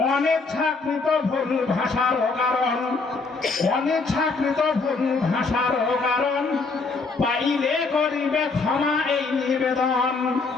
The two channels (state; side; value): quieter; right; 4.1 dB